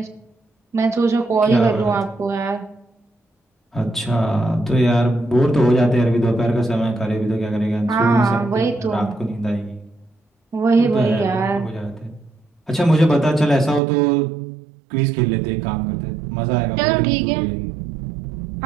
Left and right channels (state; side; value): drops out; left; at 13.8 s